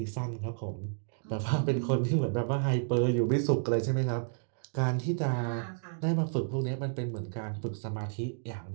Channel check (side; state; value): left; silent; digital silence